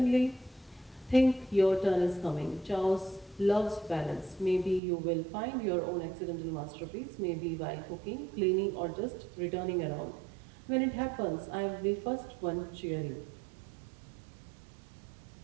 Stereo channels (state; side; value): drops out; left; at 4.8 s